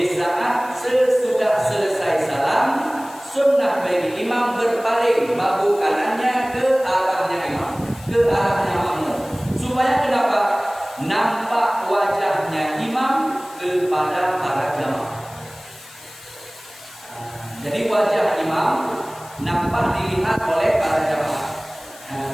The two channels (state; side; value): noise; left; hiss, 20 dB below the sound